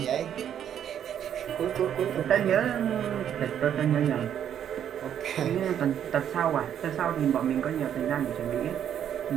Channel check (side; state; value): left; quieter; 9.5 dB